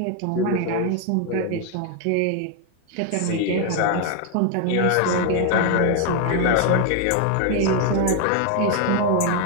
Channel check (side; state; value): both; different; correlation 0.00